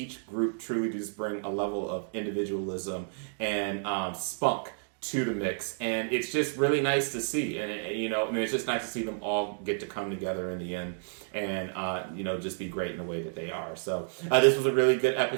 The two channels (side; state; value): left; silent; digital silence